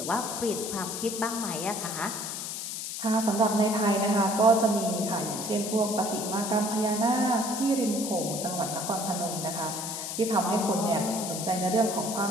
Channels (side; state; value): left; noise; hiss, 5 dB below the sound